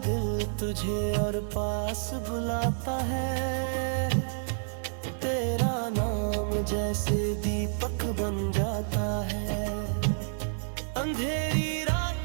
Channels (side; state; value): left; silent; digital silence